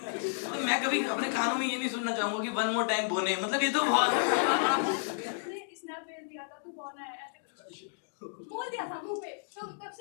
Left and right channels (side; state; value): right; silent; digital silence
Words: तो मैं कभी अपने कानों में ये नहीं सुनना चाहूंगा कि वन मोर टाइम बोने, मतलब ये तो बहुत। स्नैप भेज दिया था तू कौन है ऐसे बोल दिया था मुंह पे, तो तब